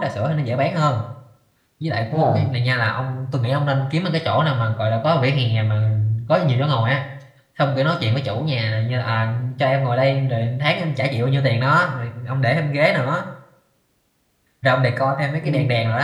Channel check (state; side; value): identical; both; correlation 1.00